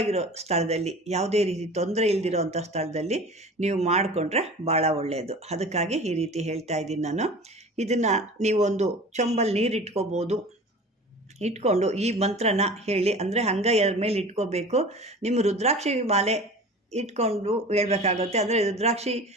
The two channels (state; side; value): normal; both; correlation 0.39